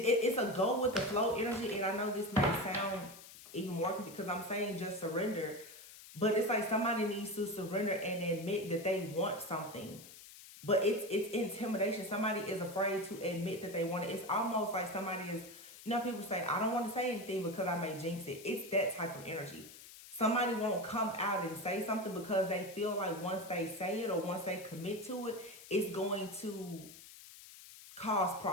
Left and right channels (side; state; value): left; noise; hiss, 17 dB below the sound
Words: a go with the flow energy. And I know this may sound even more because I'm saying just surrender, but it's like somebody needs to surrender and admit that they want something. But it's intimidation. Somebody is afraid to admit that they want it. It's almost like somebody is, you know, people say, I don't want to say anything because I may jinx it. It's that type of energy. Somebody won't come out and say something because they feel like once they say it or once they commit to it, it's going to cause